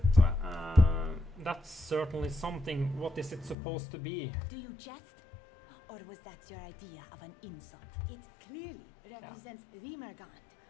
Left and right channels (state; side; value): drops out; right; at 3.6 s